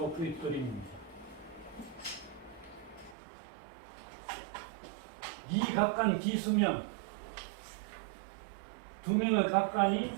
그림입니다. 이 각간 기수명 두 명의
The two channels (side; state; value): left; drops out; at 3.2 s